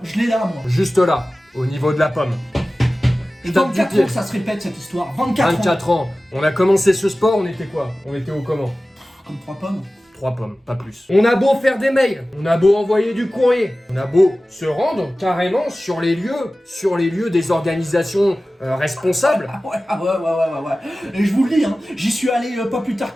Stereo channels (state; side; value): normal; both; correlation 0.96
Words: je l'ai là moi. Juste là, au niveau de la pomme. Je tape du 24 pied. ans que ça se répète cette histoire. 24 ans. 24 ans. On a commencé ce sport, on était quoi? On était au comment? Comme 3 pommes. 3 pommes, pas plus. On a beau faire des mails, on a beau envoyer du courrier, on a beau se rendre carrément sur les lieux des organisations responsables. Ah ouais. Et je vous le dis, hein, j'y suis allé pas plus tard